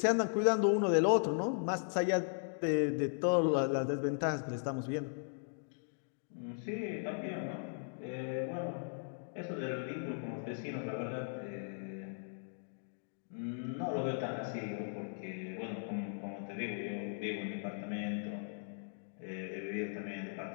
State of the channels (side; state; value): right; silent; digital silence